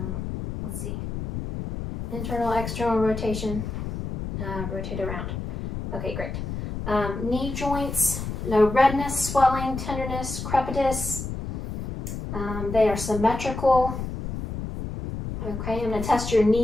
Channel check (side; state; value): left; noise; rumble, 6 dB below the sound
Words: let's see. Internal, external rotation. Rotate around. Okay, great. Knee joints, no redness, swelling, tenderness, crepitus. They are symmetrical. Okay, I'm going to test your